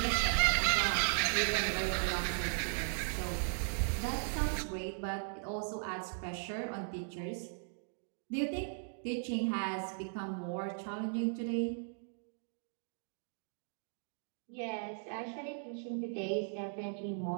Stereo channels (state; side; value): silent; left; digital silence